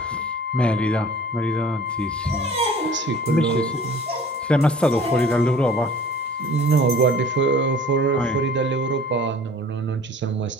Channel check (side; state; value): both; normal; correlation 0.47